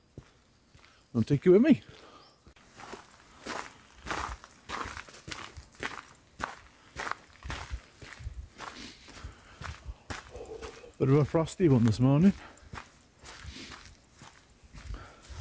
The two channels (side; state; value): both; identical; correlation 1.00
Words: I'll take you with me. Bit of a frosty one this morning.